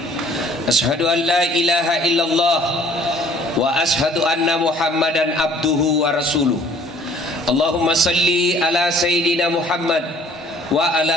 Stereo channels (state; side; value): normal; both; correlation 0.55